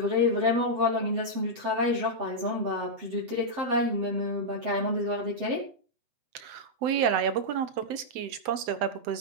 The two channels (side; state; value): left; late; 7.9 ms